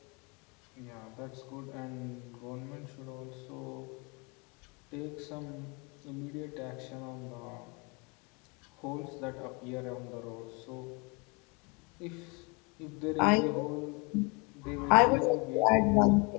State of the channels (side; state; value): right; quieter; 30.3 dB